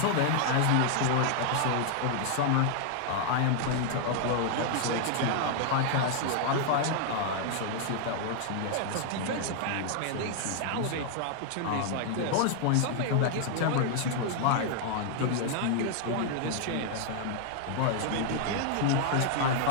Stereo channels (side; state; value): both; different; correlation -0.01